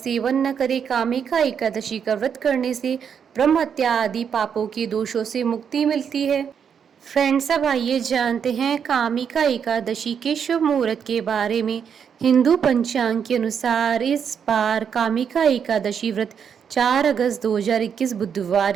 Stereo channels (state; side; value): quieter; left; 7.4 dB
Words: न करें। कामिका एकादशी का व्रत करने से ब्रह्म हत्या आदि पापों के दोषों से मुक्ति मिलती है। फ्रेंड्स, अब आइए जानते हैं कामिका एकादशी के शुभ मुहूर्त के बारे में। हिंदू पंचांग के अनुसार इस बार कामिका एकादशी व्रत 4 अगस्त 2021